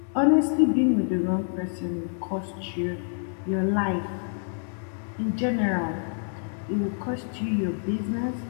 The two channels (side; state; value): right; silent; 60 dB below the other